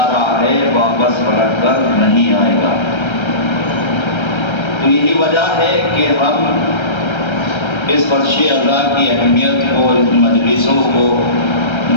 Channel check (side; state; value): right; late; 1.3 ms